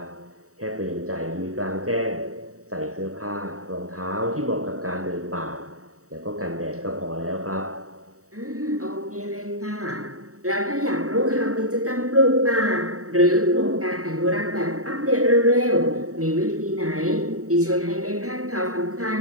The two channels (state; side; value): late; left; 0.65 ms